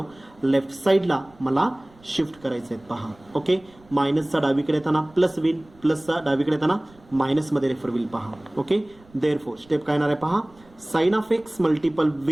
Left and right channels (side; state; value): right; noise; rumble, 27 dB below the sound